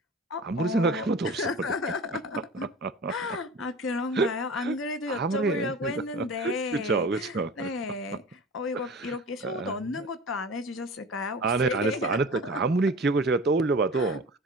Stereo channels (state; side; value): normal; both; correlation 0.38